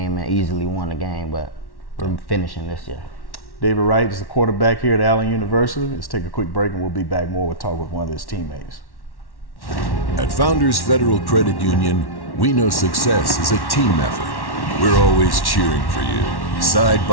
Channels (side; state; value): right; late; 1.1 ms